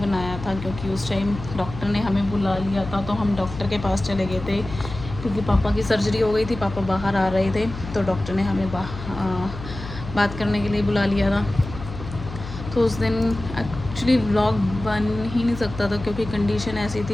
बनाया था क्योंकि उस टाइम डॉक्टर ने हमें बुला लिया था, तो हम डॉक्टर के पास चले गए थे क्योंकि पापा की सर्जरी हो गई थी। पापा बाहर आ रहे थे तो डॉक्टर ने हमें बात करने के लिए बुला लिया था। तो उस दिन एक्चुअली व्लॉग बन ही नहीं सकता था क्योंकि कंडीशन ऐसी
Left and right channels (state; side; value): noise; left; hum, 11 dB below the sound